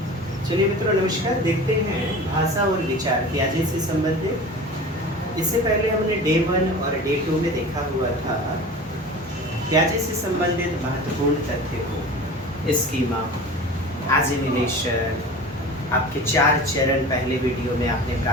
चलिए मित्रों नमस्कार। देखते हैं भाषा और विचार प्याजे से संबंधित। इससे पहले हमने डे 1 और डे 2 में देखा हुआ था प्याजे से संबंधित महत्वपूर्ण तथ्य को, स्कीमा, एजिमिलेशन, आपके 4 चरण पहले वीडियो में आपने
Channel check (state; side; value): normal; both; correlation 0.36